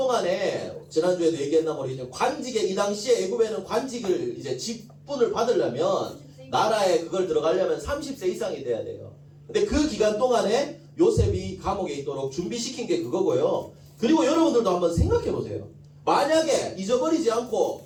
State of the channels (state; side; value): identical; both; correlation 1.00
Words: 지난주에도 얘기했나 모르겠지만 관직에 이 당시에 애굽에는 관직을 이제 직분을 받으려면 나라에 그걸 들어가려면 30세 이상이 돼야 돼요. 근데 그 기간 동안에 요셉이 감옥에 있도록 준비시킨 게 그거고요. 그리고 여러분들도 한번 생각해 보세요. 만약에 잊어버리지 않고